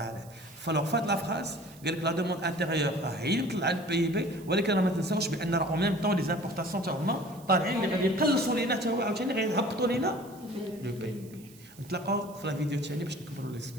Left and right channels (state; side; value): noise; right; hiss, 23 dB below the sound